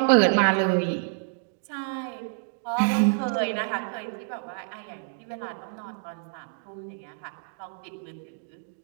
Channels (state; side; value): silent; left; digital silence